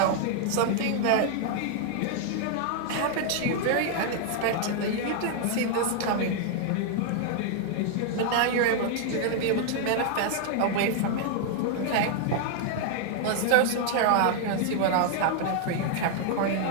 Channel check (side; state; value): both; different; correlation 0.00